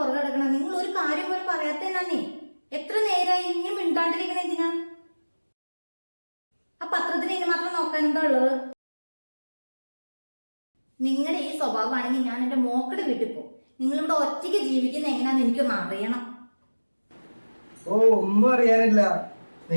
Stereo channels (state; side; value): inverted; both; correlation -1.00